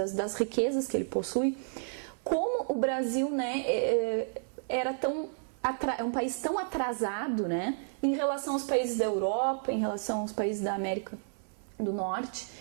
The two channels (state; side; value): silent; left; 56 dB below the other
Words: riquezas que ele possui, como o Brasil, né, é um país tão atrasado, né, em relação aos países da Europa, em relação aos países da América do Norte.